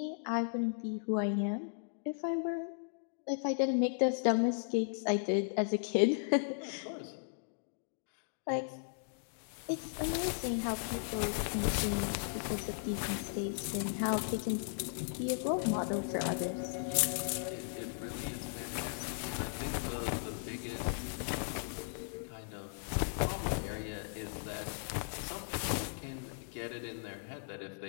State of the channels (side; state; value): right; silent; digital silence